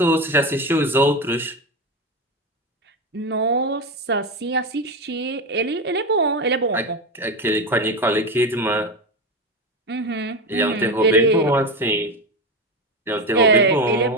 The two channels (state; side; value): normal; both; correlation 0.18